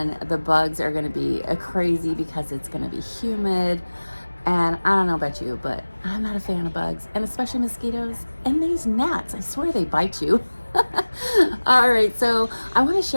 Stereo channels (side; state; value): both; inverted; correlation -1.00